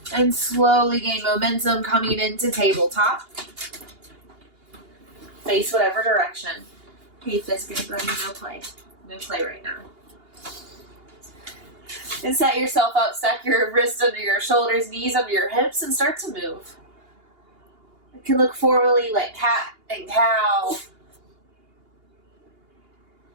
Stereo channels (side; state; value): left; late; 2.8 ms